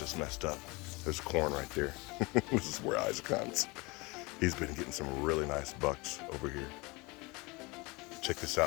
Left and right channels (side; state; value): right; quieter; 25.4 dB